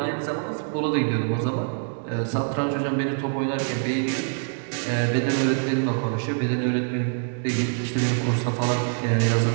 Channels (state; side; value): silent; left; 62 dB below the other